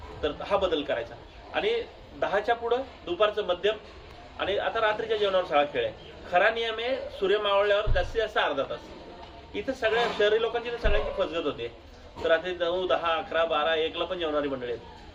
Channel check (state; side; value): identical; both; correlation 1.00